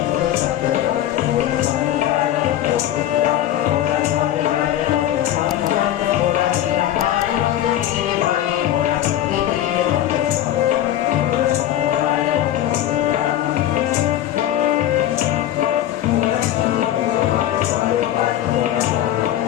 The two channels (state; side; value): quieter; right; 12.3 dB